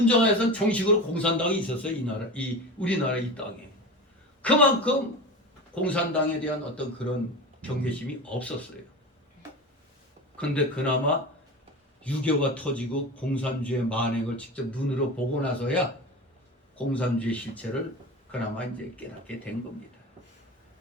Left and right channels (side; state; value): both; normal; correlation 0.29